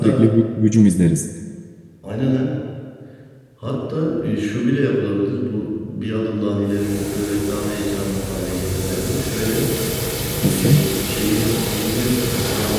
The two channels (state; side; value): identical; both; correlation 1.00